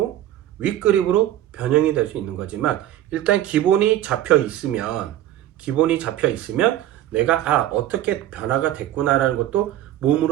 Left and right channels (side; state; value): left; quieter; 12.9 dB